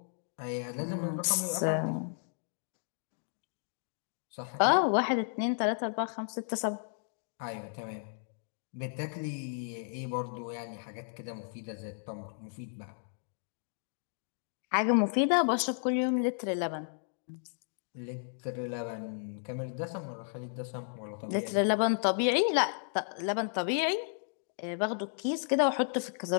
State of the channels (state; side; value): silent; right; digital silence